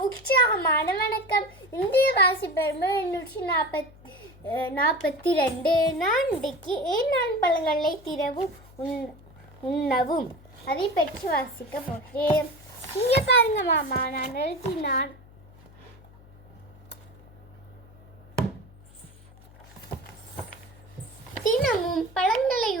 உற்சாகமான வணக்கம். இந்திய வாசிப்பெருமை 842. நான் இன்றைக்கு ஏன் பழங்களை திறவும் உண்ணவும் அதை பற்றி வாசிக்க போகிறேன். இங்கே பாருங்க மாமா, நான் எழுதினான். தினமும் பழங்களை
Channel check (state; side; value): noise; left; hum, 23 dB below the sound